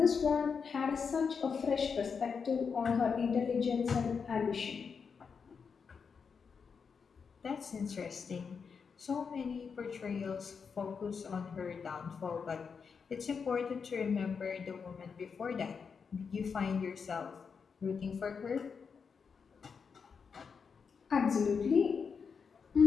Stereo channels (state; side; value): quieter; right; 5.9 dB